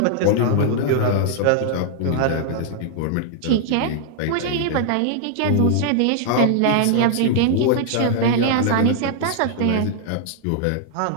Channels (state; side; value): different; both; correlation -0.01